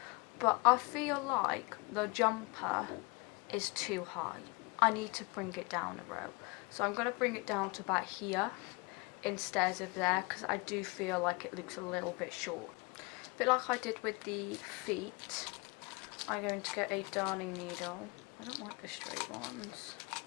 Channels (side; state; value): right; quieter; 28.2 dB